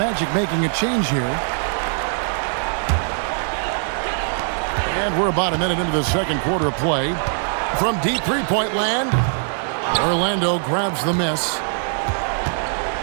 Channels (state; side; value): silent; left; 65 dB below the other